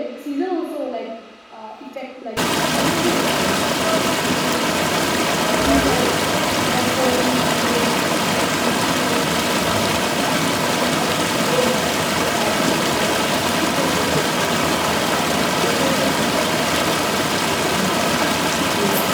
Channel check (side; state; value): both; identical; correlation 1.00